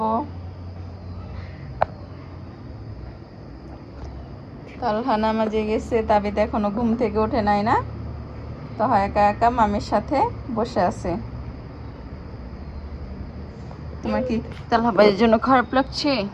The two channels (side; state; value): both; identical; correlation 1.00